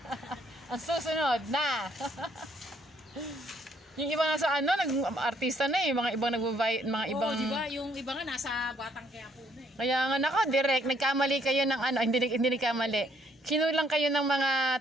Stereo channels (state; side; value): normal; both; correlation 0.68